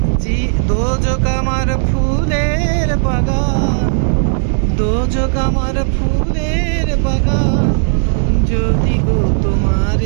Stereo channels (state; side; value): silent; left; digital silence